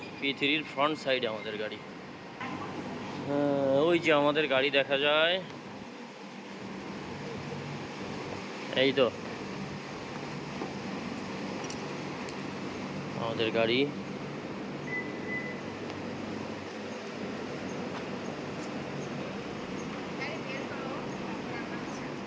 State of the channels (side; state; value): both; identical; correlation 1.00